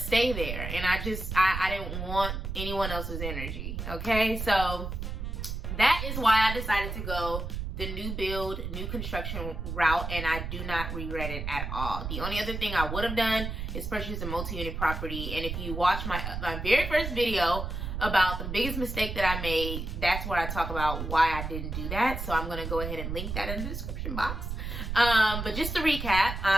there. And I didn't want anyone else's energy. Okay. So that is why I decided to go the new build, new construction route, and I do not regret it at all. The only other thing I would have done is purchase a multi-unit property. And if you watch my very first video about the biggest mistake that I made, that's where I talk about why I didn't do that. So I'm gonna go ahead and link that in the description box. But just to recap,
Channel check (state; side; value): noise; right; rumble, 5 dB below the sound